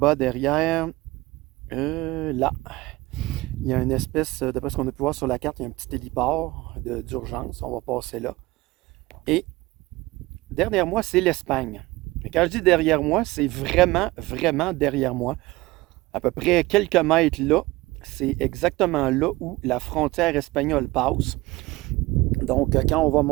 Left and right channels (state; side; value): quieter; left; 20.3 dB